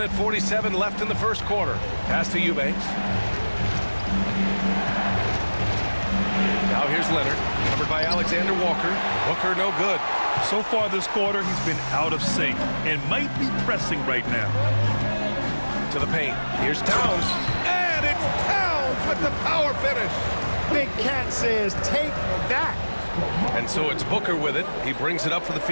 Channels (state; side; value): inverted; both; correlation -1.00